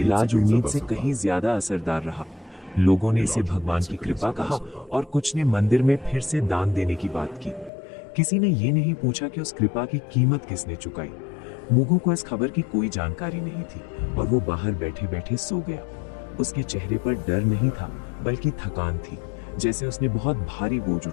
उम्मीद से कहीं ज्यादा असरदार रहा। लोगों ने इसे भगवान की कृपा कहा और कुछ ने मंदिर में फिर से दान देने की बात की। किसी ने ये नहीं पूछा कि उस कृपा की कीमत किसने चुकाई। मुगु को इस खबर की कोई जानकारी नहीं थी और वो बाहर बैठे बैठे सो गया। उसके चेहरे पर डर नहीं था बल्कि थकान थी, जैसे उसने बहुत भारी बोझ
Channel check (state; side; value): drops out; right; at 7.7 s